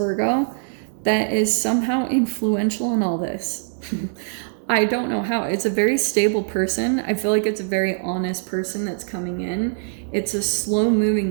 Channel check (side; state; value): left; silent; 64 dB below the other